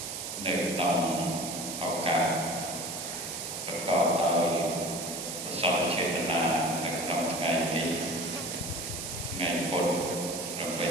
នៅក្នុងឱកាសប្រកបដោយប្រសពចេតនានៅក្នុងថ្ងៃនេះថ្ងៃពុធ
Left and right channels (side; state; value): right; noise; hiss, 6 dB below the sound